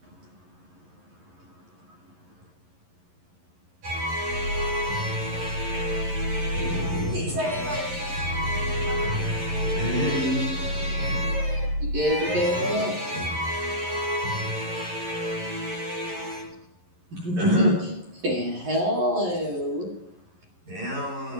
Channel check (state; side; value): late; left; 11 ms